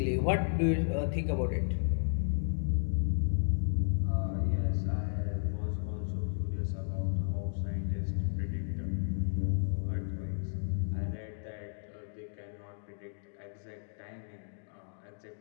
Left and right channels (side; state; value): right; silent; digital silence